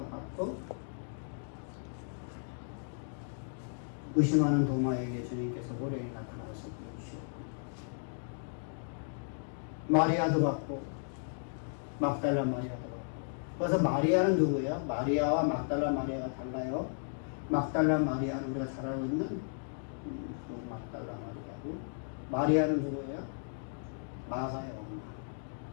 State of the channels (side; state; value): right; silent; digital silence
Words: 받고 의심하는 도마에게 주님께서 호련히 나타나서 보여주셨고 마리아도 받고 막달라 마리아도 받고. 그래서 마리아는 누구예요? 마리아와 막달라 마리아가 달라요. 막달라 마리아는 우리가 잘 알고 있는 그 막달라 마리아고, 마리아는 누구예요? 마가의 엄마.